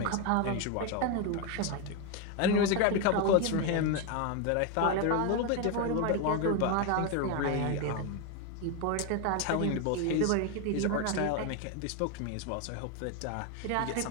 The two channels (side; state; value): both; different; correlation 0.02